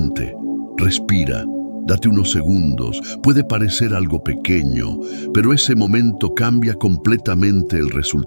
respira, date unos segundos. Puede parecer algo pequeño, pero ese momento cambia completamente el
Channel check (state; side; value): inverted; both; correlation -1.00